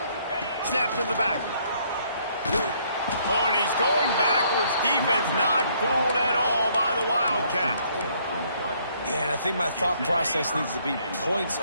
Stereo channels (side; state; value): both; inverted; correlation -0.66